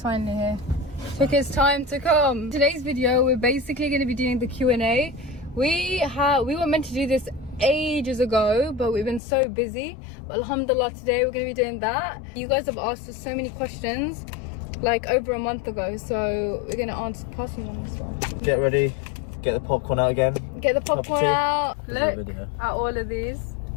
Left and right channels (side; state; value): right; drops out; at 9.2 s